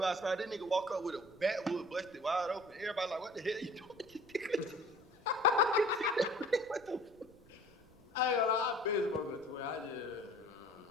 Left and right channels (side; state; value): right; noise; rumble, 27 dB below the sound